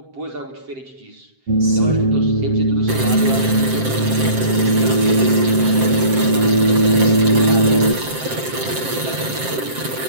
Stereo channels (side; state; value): left; late; 7.6 ms